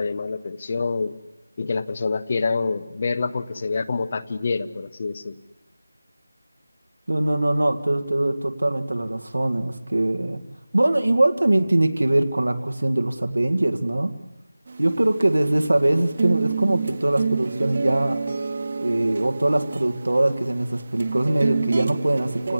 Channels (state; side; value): inverted; both; correlation -0.97